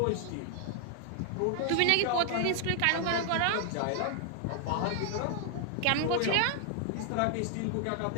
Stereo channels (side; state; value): both; different; correlation 0.00